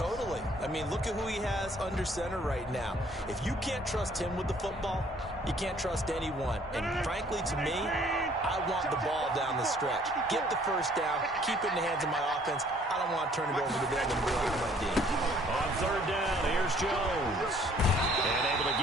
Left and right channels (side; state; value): both; normal; correlation 0.59